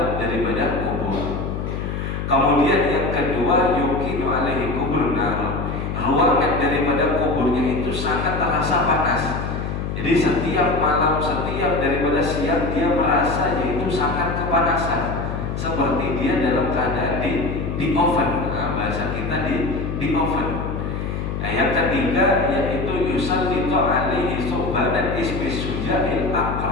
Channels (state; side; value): noise; left; hum, 4 dB below the sound